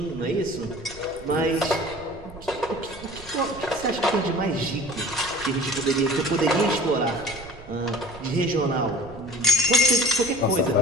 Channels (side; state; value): right; noise; rumble, 18 dB below the sound